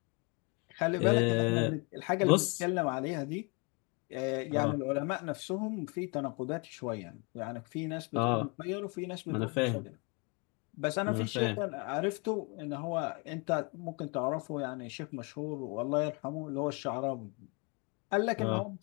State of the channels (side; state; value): right; quieter; 30.7 dB